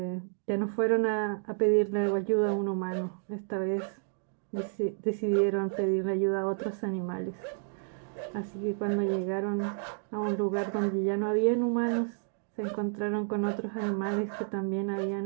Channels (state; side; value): silent; left; digital silence